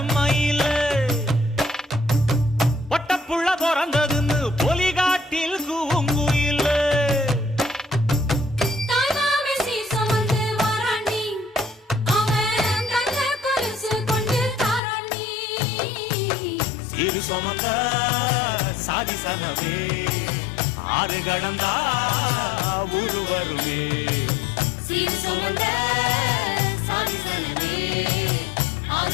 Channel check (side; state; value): right; drops out; at 14.8 s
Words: மயில பொட்டப்புள்ள பிறந்ததுன்னு பொலிகாட்டில் கூங்குயில இரு சுமந்த சாதிசனவே ஆறு கடந்தா ஊரு வருமே சீர் சுமந்த சாதிசனவே